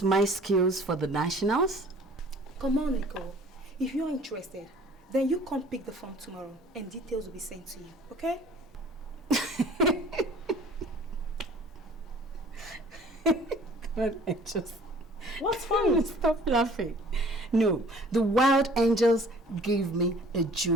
my skills for the nationals? Come on, Nicole. If you're interested, then you come pick the form tomorrow and details will be sent to you, okay? God, I just... What's funny? Stop laughing. No, the Wild Angels gave me a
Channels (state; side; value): normal; both; correlation 0.51